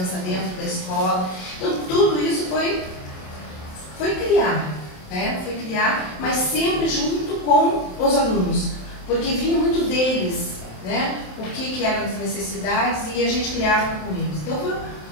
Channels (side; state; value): right; late; 27 ms